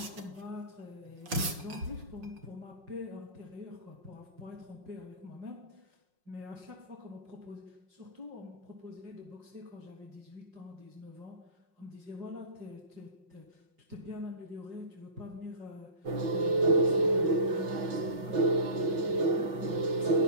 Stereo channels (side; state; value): left; late; 5.5 ms